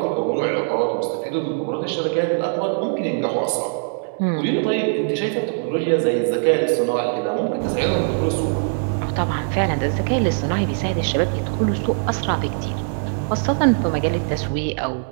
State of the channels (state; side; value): silent; left; digital silence